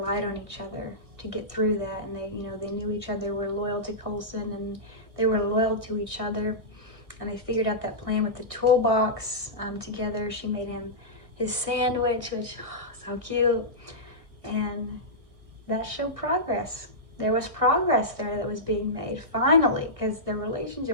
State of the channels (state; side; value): late; left; 1.6 ms